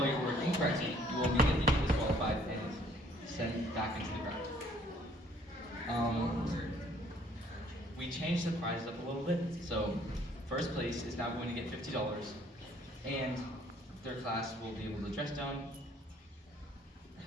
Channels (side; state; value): both; normal; correlation 0.60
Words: your word incorrectly, you will immediately be disqualified and sent back into the ground. We changed the prizes up a little bit, so first place is now going to get $50, and their class will be able to dress down,